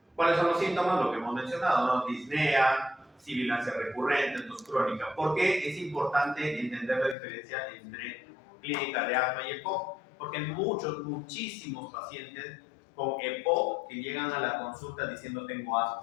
¿Cuáles son los síntomas? Lo que hemos mencionado, ¿no? Disnea, sibilancia recurrente, tos crónica. ¿Por qué es importante entender la diferencia entre clínica de asma y EPOC? Porque hay muchísimos pacientes con EPOC que llegan a la consulta diciendo tengo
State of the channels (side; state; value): right; drops out; at 7.2 s